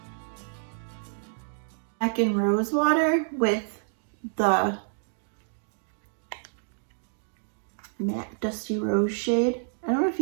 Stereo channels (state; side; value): silent; left; digital silence